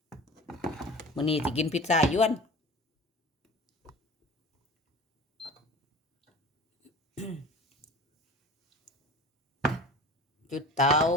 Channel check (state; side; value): normal; both; correlation 0.38